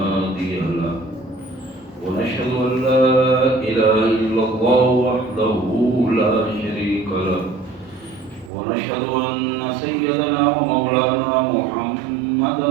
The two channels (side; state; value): left; drops out; at 8.5 s